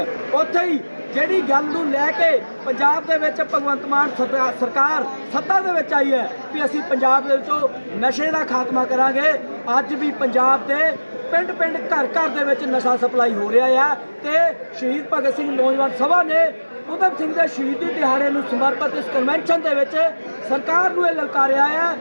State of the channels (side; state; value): both; inverted; correlation -1.00